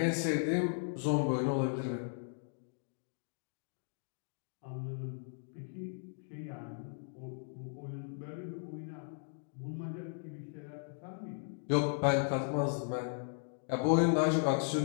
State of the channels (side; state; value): right; silent; digital silence